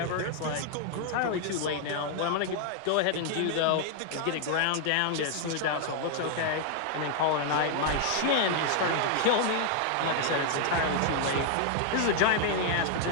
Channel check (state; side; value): different; both; correlation 0.00